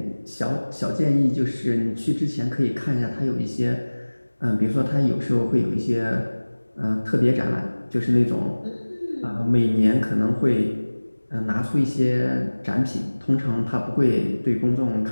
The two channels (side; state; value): both; inverted; correlation -1.00